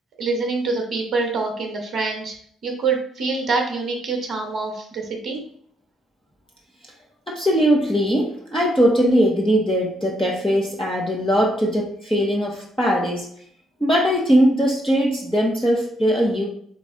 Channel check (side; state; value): both; normal; correlation 0.75